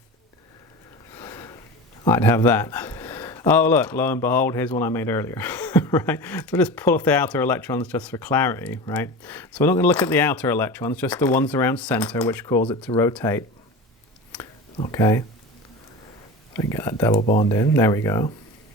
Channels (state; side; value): normal; both; correlation 0.30